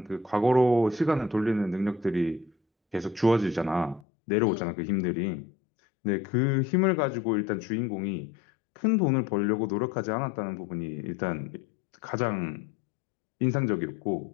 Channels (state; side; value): drops out; right; at 4.0 s